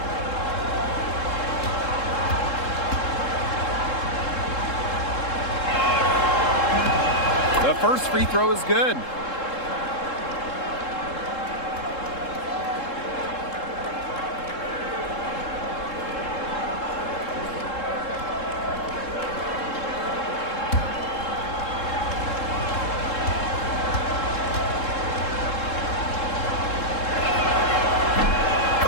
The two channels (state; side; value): late; right; 3.7 ms